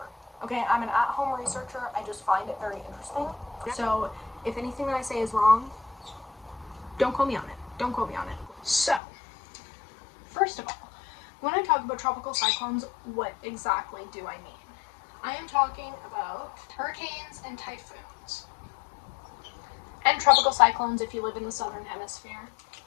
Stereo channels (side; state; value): right; drops out; at 9.0 s